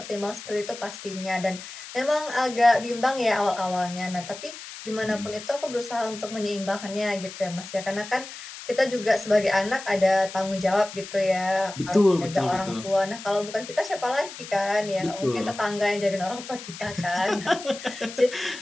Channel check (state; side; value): noise; left; hiss, 13 dB below the sound